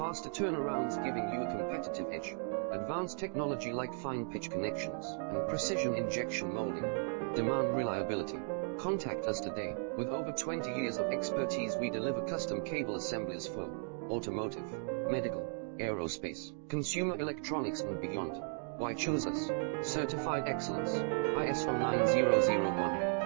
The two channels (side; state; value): left; silent; 54 dB below the other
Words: turnarounds giving you a competitive edge. Advanced technology like fine pitch connections and precision injection molding. Demand reliability. Contact us today. With over 20 years of expertise, we deliver custom cable assemblies for automotive, medical, aerospace, consumer electronics and beyond. Why choose us? Certified excellence, ISO 9001,